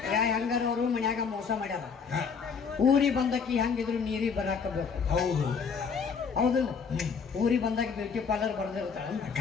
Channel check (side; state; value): right; quieter; 5.9 dB